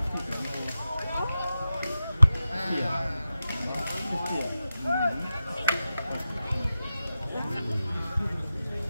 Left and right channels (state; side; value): inverted; both; correlation -0.92